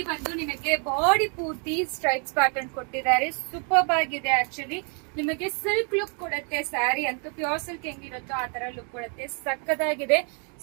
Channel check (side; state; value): left; quieter; 38.8 dB